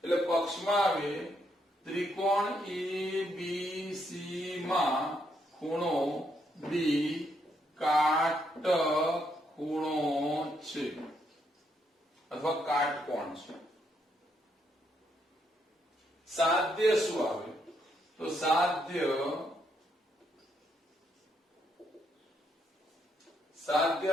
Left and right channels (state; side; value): normal; both; correlation 0.76